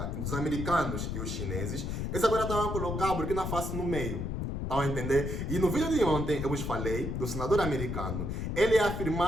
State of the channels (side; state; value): left; noise; rumble, 3 dB below the sound